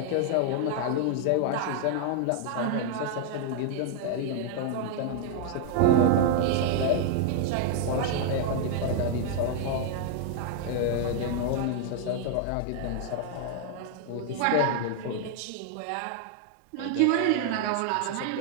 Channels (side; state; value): both; different; correlation 0.00